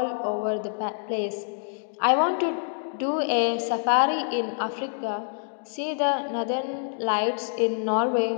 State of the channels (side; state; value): right; silent; digital silence